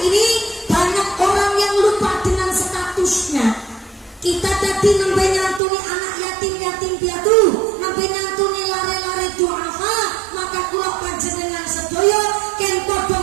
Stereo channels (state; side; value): drops out; left; at 5.6 s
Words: ini banyak orang yang lupa dengan statusnya. Kita tadi nembe nyantuni anak yatim piatu, nembe nyantuni lare-lare duafa, maka kula panjenengan sedaya ken padha